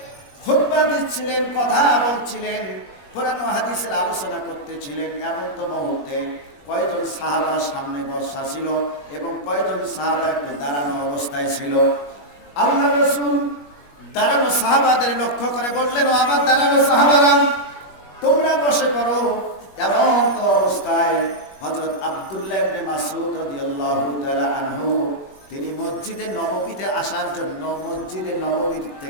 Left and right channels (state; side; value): late; right; 21 ms